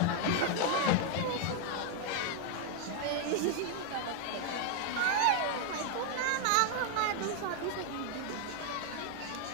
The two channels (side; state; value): both; different; correlation 0.00